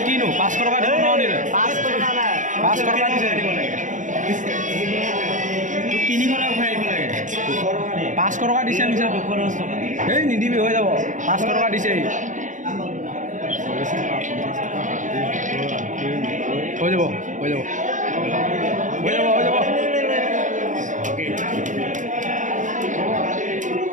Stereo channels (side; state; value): left; late; 0.37 ms